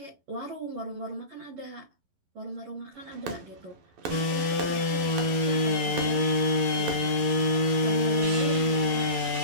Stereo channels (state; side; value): late; left; 11 ms